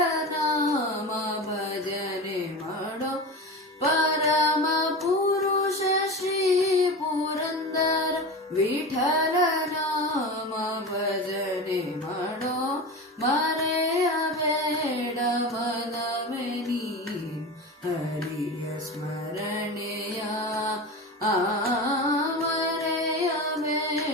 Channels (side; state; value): both; normal; correlation 0.27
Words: ನಾಮ ಭಜನೆ ಮಾಡೋ, ಪರಮ ಪುರುಷ ಶ್ರೀ ಪುರಂದರ ವಿಠಲ ನಾಮ ಭಜನೆ ಮಾಡೋ, ಮರೆಯಬೇಡ ಮನವೇ ನೀನು ಹರಿಯ ಸ್ಮರಣೆಯ,